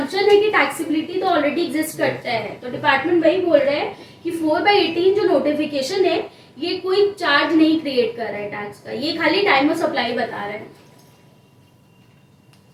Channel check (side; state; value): both; identical; correlation 1.00